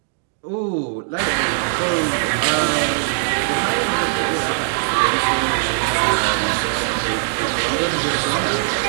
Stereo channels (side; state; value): left; silent; digital silence